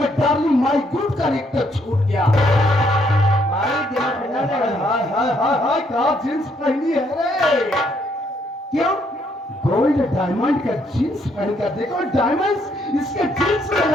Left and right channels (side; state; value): both; normal; correlation 0.71